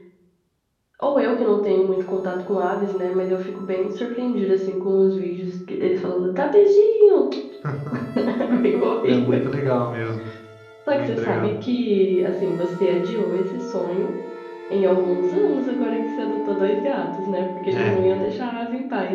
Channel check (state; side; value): identical; both; correlation 1.00